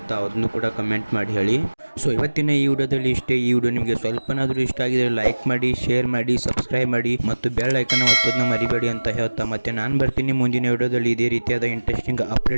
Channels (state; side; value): inverted; both; correlation -1.00